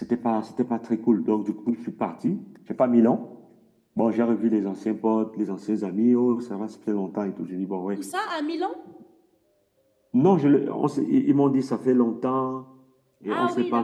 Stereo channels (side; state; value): both; identical; correlation 1.00